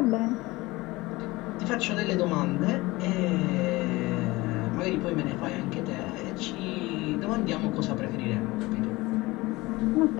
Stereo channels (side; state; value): right; quieter; 21.0 dB